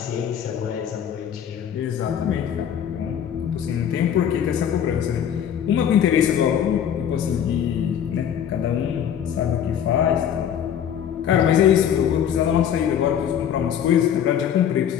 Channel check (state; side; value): quieter; right; 9.1 dB